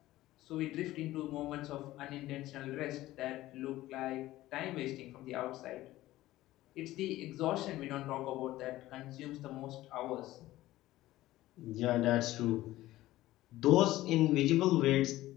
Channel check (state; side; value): quieter; right; 16.2 dB